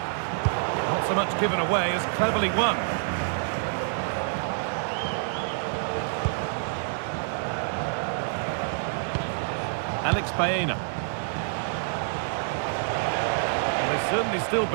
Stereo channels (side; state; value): left; silent; digital silence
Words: Not so much given away as cleverly won. Alex Baena. Well, they certainly still